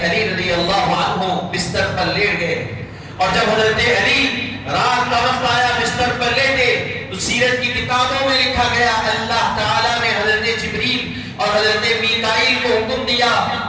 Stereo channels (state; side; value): identical; both; correlation 1.00